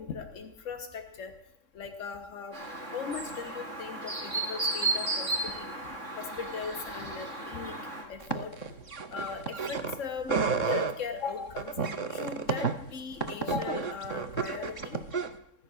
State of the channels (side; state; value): right; late; 3.7 ms